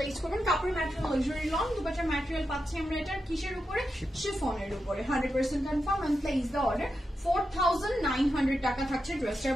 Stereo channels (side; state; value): both; normal; correlation 0.87